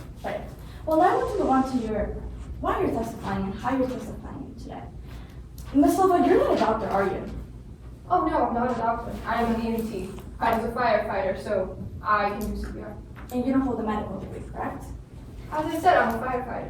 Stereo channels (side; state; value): both; identical; correlation 1.00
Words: Right. Well, now I want to move on to why you're testifying and how you're testifying today. Ms. Silva, you're not a doctor, are you? Oh no, I'm not a doctor. I am an EMT. I was a firefighter, so I can do CPR. And you don't hold a medical degree, correct? As I said, I'm a